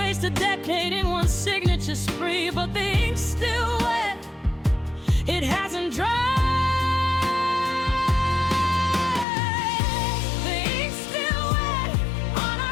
a decade in one signature spree, but the ink's still wet, it hasn't dried.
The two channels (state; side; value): drops out; right; at 9.2 s